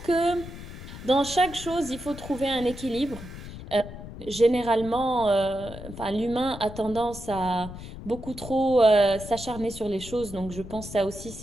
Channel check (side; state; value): left; noise; rumble, 12 dB below the sound